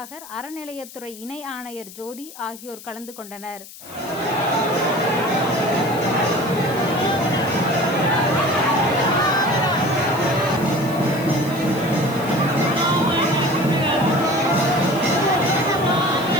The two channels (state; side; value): noise; left; hiss, 17 dB below the sound